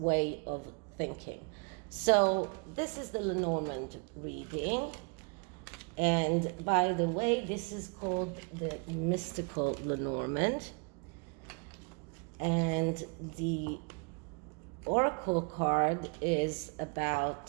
of thinking. So this is the Lenormand reading. And by the way, this is called the mystical Lenormand. And the oracle card is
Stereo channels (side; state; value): left; quieter; 34.4 dB